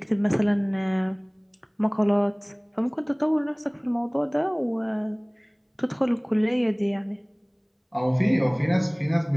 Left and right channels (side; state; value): both; identical; correlation 1.00